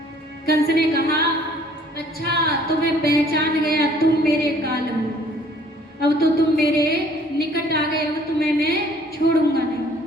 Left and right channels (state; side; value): normal; both; correlation 0.57